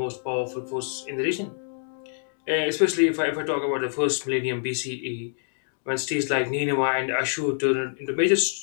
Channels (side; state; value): right; silent; digital silence